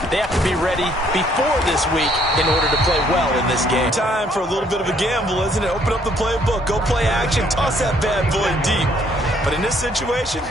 They have to be ready before this week in order to play well in this game. Time for a little bit of a gamble, isn't it? Open up the playbook, go play action, toss that bad boy deep. But in this situation,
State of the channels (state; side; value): normal; both; correlation 0.65